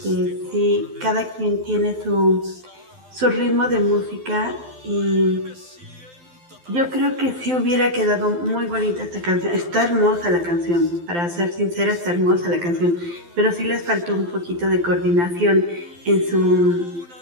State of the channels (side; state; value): left; late; 12 ms